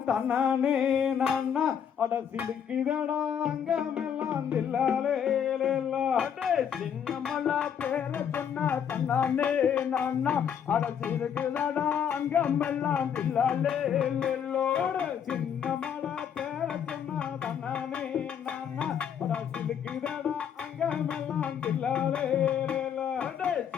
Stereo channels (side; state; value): right; quieter; 8.3 dB